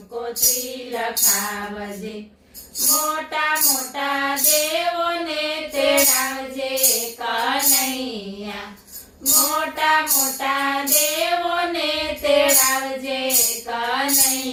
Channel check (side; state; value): both; identical; correlation 1.00